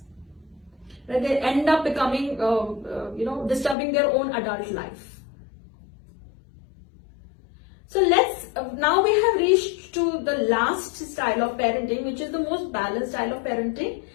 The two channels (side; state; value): right; drops out; at 3.8 s